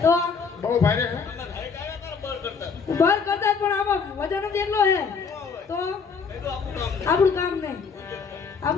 તો બહુ ભારે છે. ઉભાર કરતા પણ આમાં વજન જ એટલો હે તો આપણું કામ નહીં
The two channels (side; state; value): right; quieter; 5.6 dB